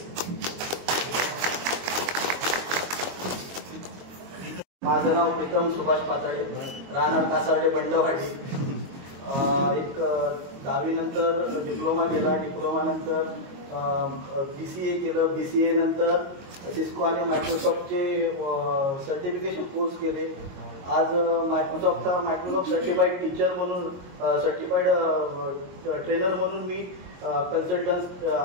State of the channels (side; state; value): left; late; 22 ms